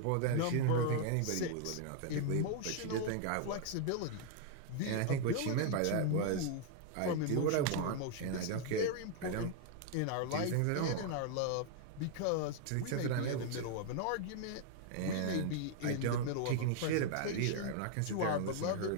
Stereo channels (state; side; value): different; both; correlation 0.00